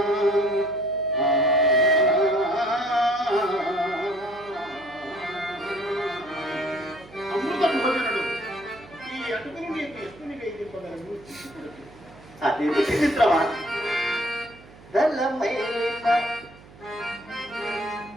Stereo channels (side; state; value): right; noise; hum, 22 dB below the sound